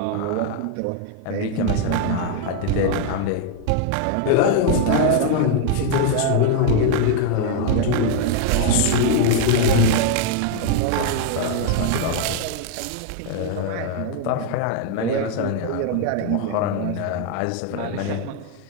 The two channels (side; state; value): both; different; correlation 0.00